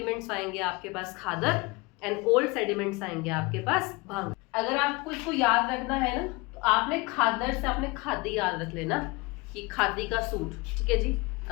आएंगे आपके पास खादर, एंड ओल्ड सेडिमेंट्स आएंगे आपके पास भांगर। अगर आपको इसको याद रखना है ना, तो आपने खादर से आपने खादी याद रख लेना कि खादी का सूट, ठीक है जी।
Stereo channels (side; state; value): right; quieter; 24.8 dB